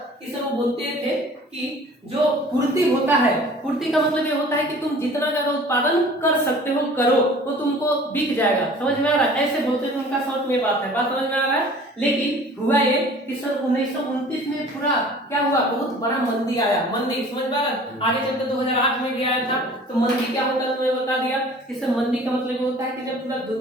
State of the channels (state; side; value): normal; both; correlation 0.47